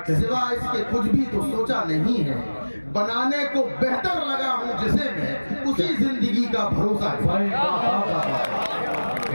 सिवा इसके कुछ भी तो सोचा नहीं है। बनाने को बेहतर लगा हूँ जिसे मैं, उसी जिंदगी का भरोसा है।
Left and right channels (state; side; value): inverted; both; correlation -1.00